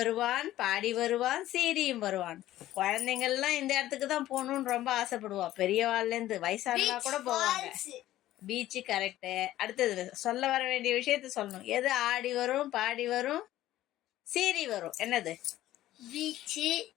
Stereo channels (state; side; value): quieter; right; 14.3 dB